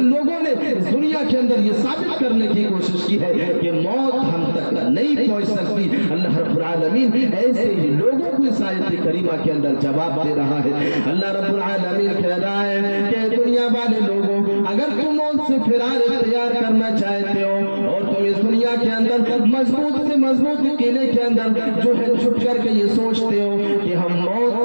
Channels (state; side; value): inverted; both; correlation -1.00